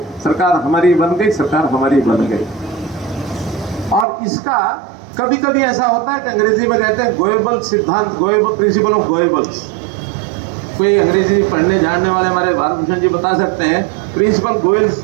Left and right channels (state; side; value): drops out; left; at 4.0 s